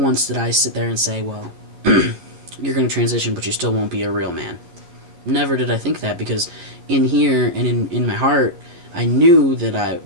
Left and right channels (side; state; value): left; late; 11 ms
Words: did I sit there and say, well, you're going to transition, but you still won't be a real man. Never did I think that, because in here and in my heart, I knew that